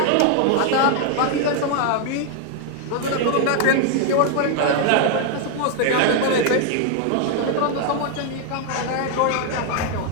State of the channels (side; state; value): both; different; correlation 0.00